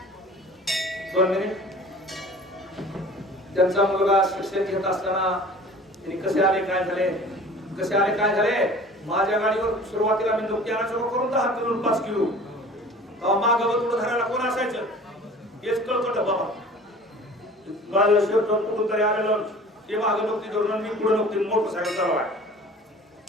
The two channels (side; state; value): both; normal; correlation 0.45